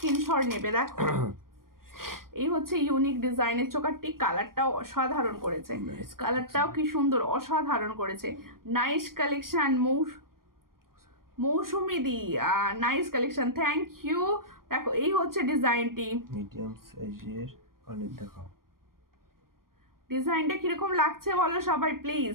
নেবে। দেখো এই হচ্ছে ইউনিক ডিজাইনের চোকারটি, কালারটাও অসাধারণ করেছে, কালারটাও কি সুন্দর, অসাধারণ করেছে। নাইস কালেকশন মৌসুমি দি, নাইস কালেকশন, থ্যাংক ইউ। দেখো এই হচ্ছে ডিজাইনটি, মিডিয়াম সাইজের অনেক দেখাও। ডিজাইনটা কিরকম লাগছে বলো সবাই প্লিজ।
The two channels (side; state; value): left; late; 0.92 ms